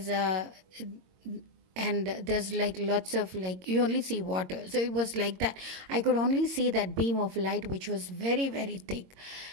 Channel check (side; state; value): left; late; 22 ms